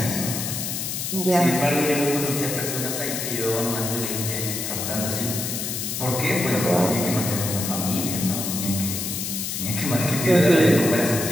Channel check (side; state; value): left; noise; hiss, 3 dB below the sound